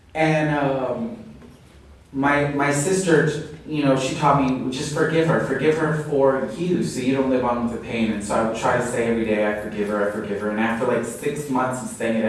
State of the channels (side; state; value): both; identical; correlation 1.00